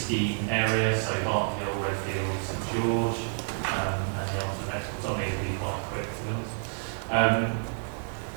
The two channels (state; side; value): silent; left; 59 dB below the other